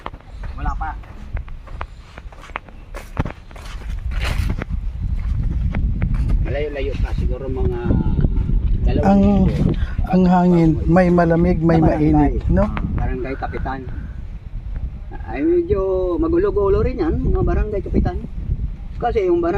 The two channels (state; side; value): identical; both; correlation 1.00